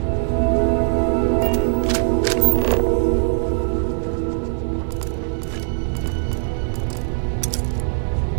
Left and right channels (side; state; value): left; silent; digital silence